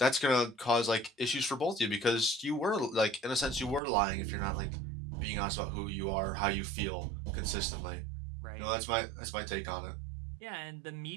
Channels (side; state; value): left; drops out; at 3.8 s